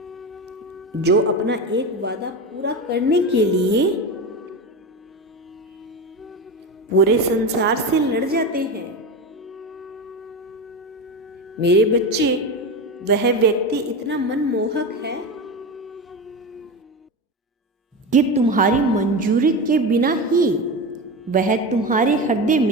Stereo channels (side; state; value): both; normal; correlation 0.21